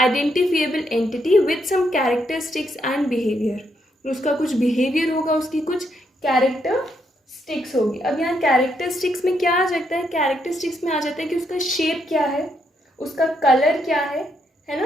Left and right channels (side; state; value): both; normal; correlation 0.77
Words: entity with some characteristics and behaviour. उसका कुछ बिहेवियर होगा, उसकी कुछ कैरेक्टरिस्टिक्स होगी। अब यहाँ कैरेक्टरिस्टिक्स में क्या आ जाता है, कैरेक्टरिस्टिक्स में आ जाता है कि उसका शेप क्या है, उसका कलर क्या है